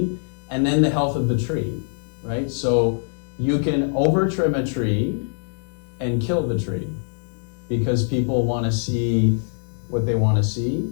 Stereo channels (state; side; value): silent; right; digital silence